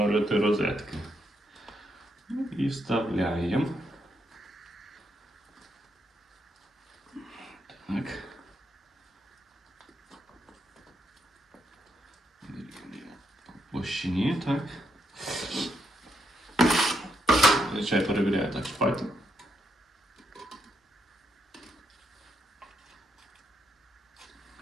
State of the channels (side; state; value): both; normal; correlation 0.79